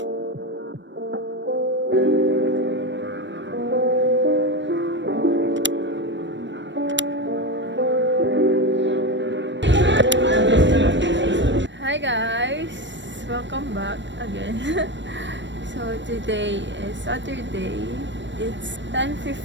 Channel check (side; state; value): left; late; 0.53 ms